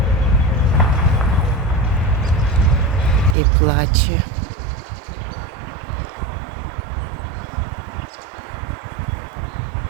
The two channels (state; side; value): drops out; left; at 3.4 s